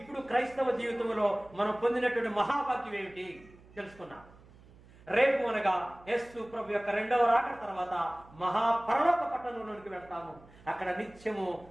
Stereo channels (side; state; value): right; noise; hum, 24 dB below the sound